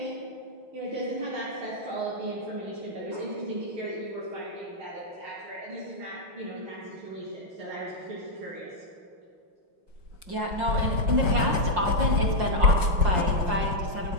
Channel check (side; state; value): left; late; 5.3 ms